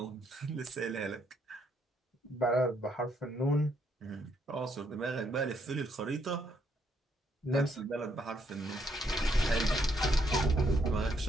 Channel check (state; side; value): normal; both; correlation 0.73